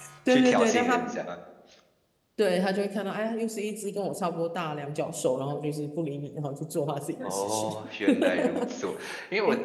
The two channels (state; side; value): identical; both; correlation 1.00